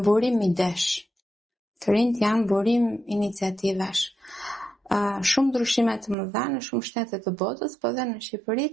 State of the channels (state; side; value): drops out; left; at 6.2 s